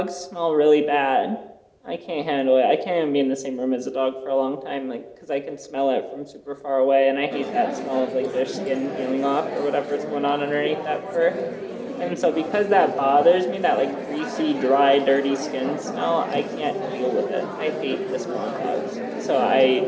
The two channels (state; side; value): identical; both; correlation 1.00